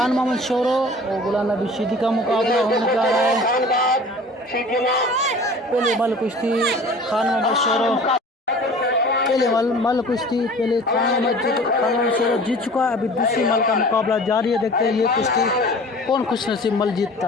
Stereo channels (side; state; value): both; normal; correlation 0.43